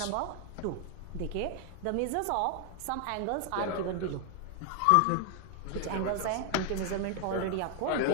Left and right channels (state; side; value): different; both; correlation 0.00